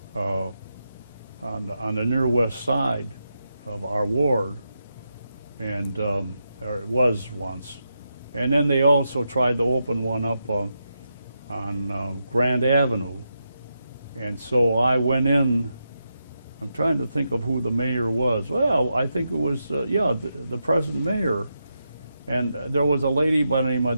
on the near west side of our ward, and or it was once. And then they also tried to open one up on Grand Avenue. And so I went in. I'm trying to think of who the mayor was. Well, I think it was, the present mayor. And there was a lady by the name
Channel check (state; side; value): inverted; both; correlation -0.86